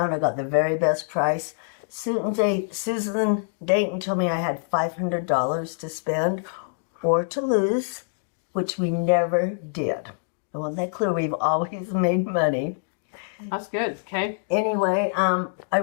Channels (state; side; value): silent; right; digital silence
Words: I got the very best price. Susan Dayton told me I had $500 to spend or to lose, which we never did. I want that clear. We've always made money. That's good. Okay. Anyway, I